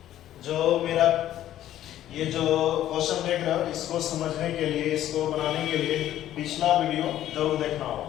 जो मेरा ये जो क्वेश्चन देख रहे हो, इसको समझने के लिए, इसको बनाने के लिए पिछला वीडियो जरूर देखना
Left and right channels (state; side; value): quieter; right; 12.5 dB